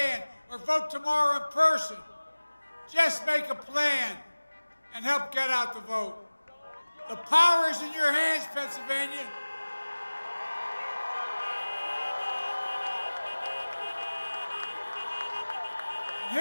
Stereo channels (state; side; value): inverted; both; correlation -1.00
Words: or vote tomorrow in person. Just make a plan and help get out the vote. The power is in your hands, Pennsylvania. And